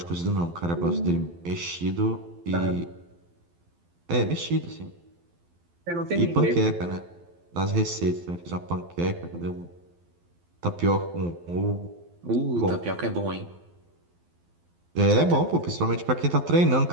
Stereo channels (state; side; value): late; left; 12 ms